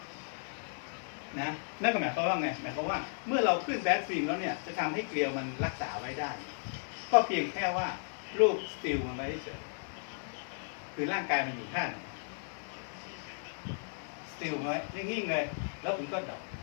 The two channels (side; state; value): right; silent; digital silence